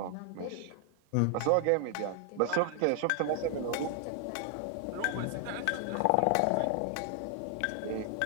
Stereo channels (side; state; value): both; different; correlation 0.00